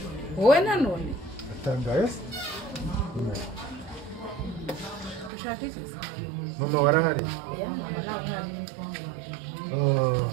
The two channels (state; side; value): drops out; left; at 5.3 s